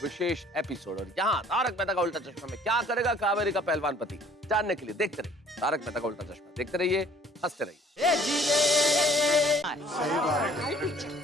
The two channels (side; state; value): both; normal; correlation 0.56